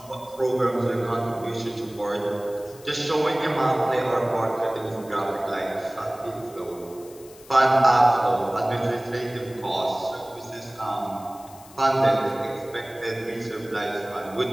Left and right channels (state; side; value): noise; left; hiss, 22 dB below the sound